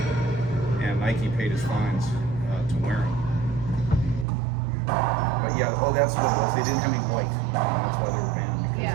and Nike paid his fines to wear them. But yeah, that's what it was. They didn't have any white. That's why they were banned,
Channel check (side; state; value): left; drops out; at 4.2 s